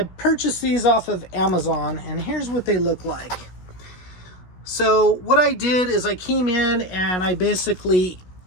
purchased these off of Amazon, and here's what they look like. So what I did is I came in and I basically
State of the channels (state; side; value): late; right; 16 ms